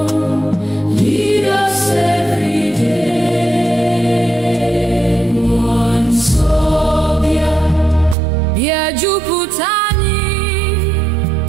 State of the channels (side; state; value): left; drops out; at 8.2 s